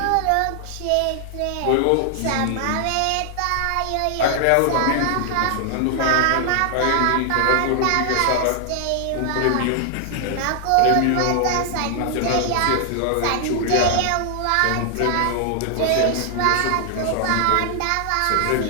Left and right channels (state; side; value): different; both; correlation 0.00